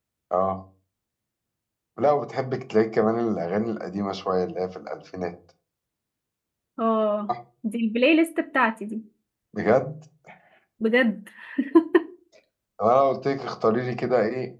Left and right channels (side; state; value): both; identical; correlation 1.00